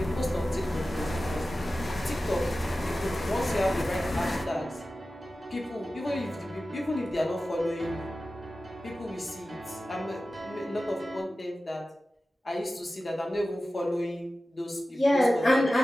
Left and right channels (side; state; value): both; normal; correlation 0.95